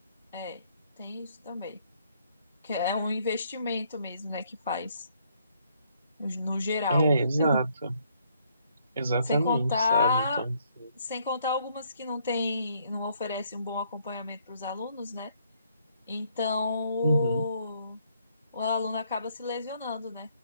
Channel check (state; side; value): inverted; both; correlation -0.69